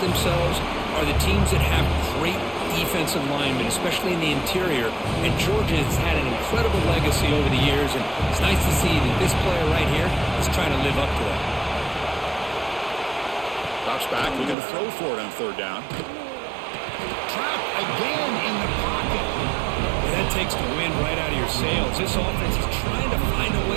are the teams that have great defensive linemen, especially in the interior. And Georgia has had an incredible legacy over the years, and it's nice to see that this player right here is trying to live up to that. Drops back, looking to throw for it on 3rd down. Trapped again in the pocket. That takes the wind right out of your sails. This offense is trying to find a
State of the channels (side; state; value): left; drops out; at 14.6 s